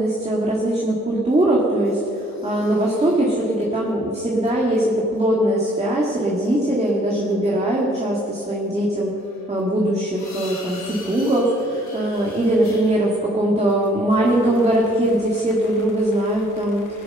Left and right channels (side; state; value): both; normal; correlation 0.62